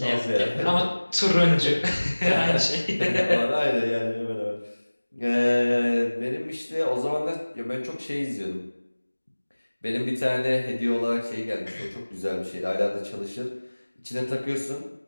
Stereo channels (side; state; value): both; inverted; correlation -1.00